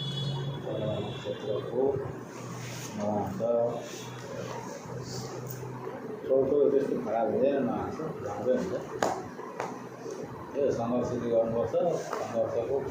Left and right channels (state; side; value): identical; both; correlation 1.00